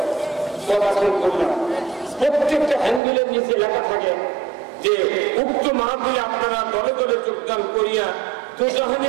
পড়াশোনা করলাম। প্রত্যেকটা হ্যান্ডেলের নিচে লেখা থাকে যে উক্ত মাহফিলে আপনারা দলে দলে যোগদান করিয়া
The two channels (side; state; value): left; drops out; at 3.0 s